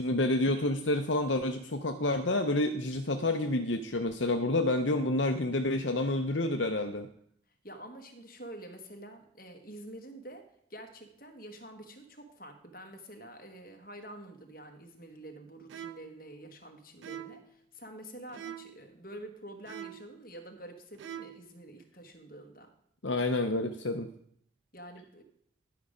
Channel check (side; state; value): both; normal; correlation 0.12